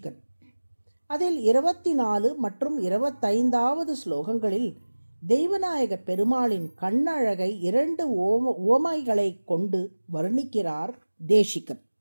அதில் 24 மற்றும் 25வது ஸ்லோகங்களில் தெய்வநாயக பெருமாளின் கண்ணழகை 2 உவமைகளை கொண்டு வர்ணிக்கிறார் தேசிகன்.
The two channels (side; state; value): both; inverted; correlation -1.00